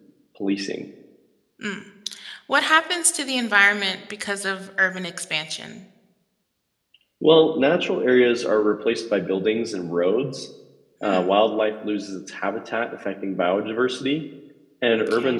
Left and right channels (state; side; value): identical; both; correlation 1.00